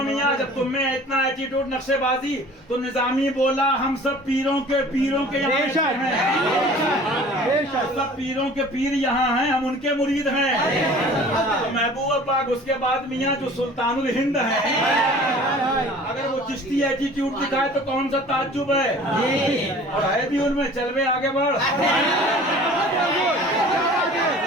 मियाँ, जब तुम में इतना एटीट्यूड नक्शेबाजी, तो निजामी बोला हम सब पीरों के यहाँ हैं, सब पीरों के पीर यहाँ हैं, हम उनके मुरीद हैं। तो महबूब पाक उसके बाद मियाँ जो सुल्तानुल हिंद है, अगर वो चिश्ती एटीट्यूड दिखाए तो कौन सा ताज्जुब है। और है भी उनमें, चलवे आगे बढ़।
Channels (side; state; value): both; normal; correlation 0.46